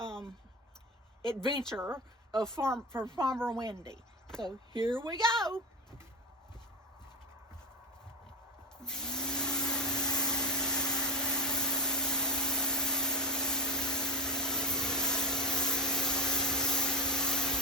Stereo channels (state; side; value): normal; both; correlation 0.20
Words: adventure of Farmer Wendy. So here we go.